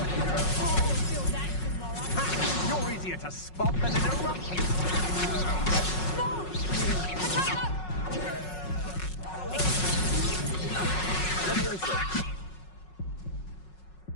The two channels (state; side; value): late; right; 5.4 ms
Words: You're easier to spot than an eruption.